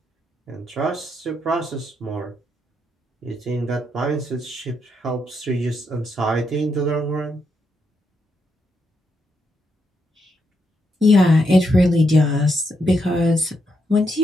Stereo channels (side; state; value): both; normal; correlation 0.80